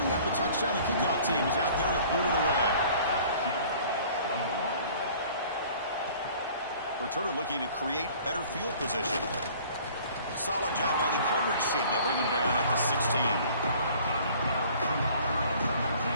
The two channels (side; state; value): both; inverted; correlation -0.51